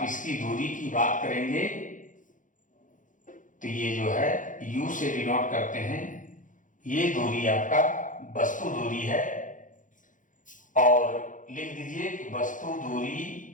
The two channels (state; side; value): late; right; 0.38 ms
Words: इसकी दूरी की बात करेंगे तो ये जो है U से डिनोट करते हैं, ये दूरी आपका वस्तु दूरी है। और लिख दीजिए कि वस्तु दूरी